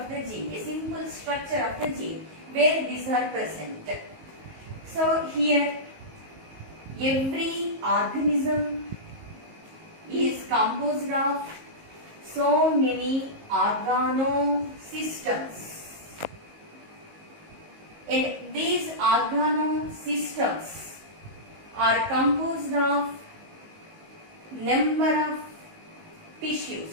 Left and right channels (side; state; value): left; late; 19 ms